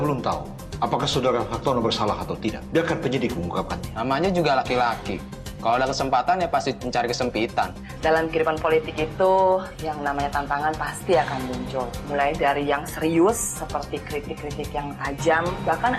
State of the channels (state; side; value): identical; both; correlation 1.00